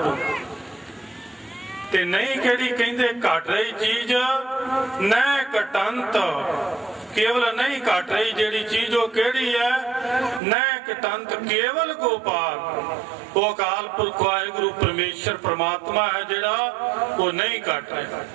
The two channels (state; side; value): drops out; left; at 10.4 s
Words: ते नहीं केड़ी कहंदे घट रही चीज, न कटंत केवल नहीं घट रही जेड़ी चीज वो केड़ी है, नैक तंत केवल गोपाल, वो अकाल पुरख वाहिगुरु परमेश्वर परमात्मा है जेड़ा वो नहीं घट रहा।